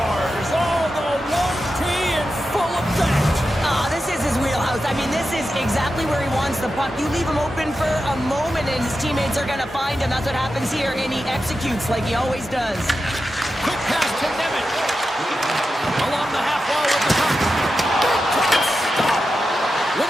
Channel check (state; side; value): normal; both; correlation 0.90